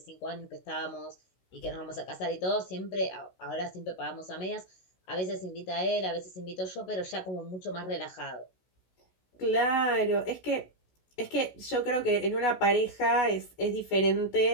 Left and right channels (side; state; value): right; late; 16 ms